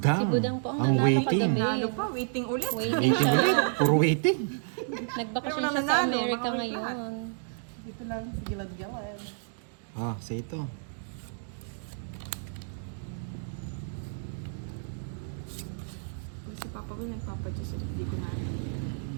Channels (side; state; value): left; silent; digital silence